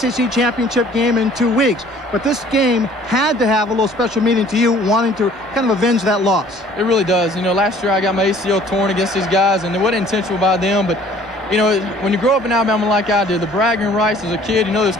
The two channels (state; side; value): normal; both; correlation 0.54